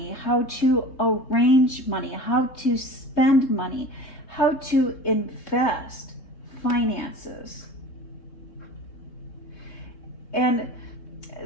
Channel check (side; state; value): right; late; 3.2 ms